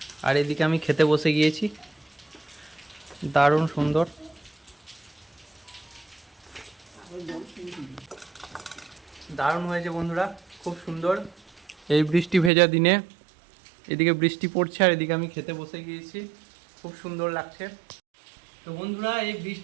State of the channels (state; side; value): drops out; left; at 12.5 s